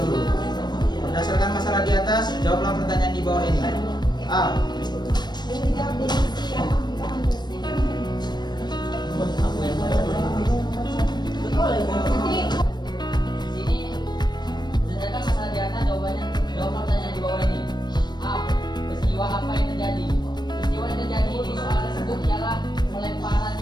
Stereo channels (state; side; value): late; right; 0.21 ms